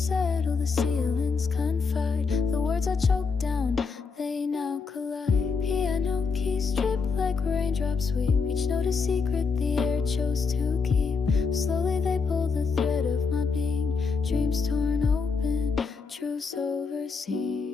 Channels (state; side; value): quieter; right; 5.0 dB